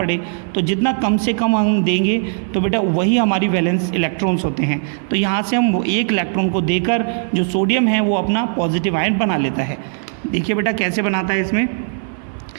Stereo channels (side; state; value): left; silent; 57 dB below the other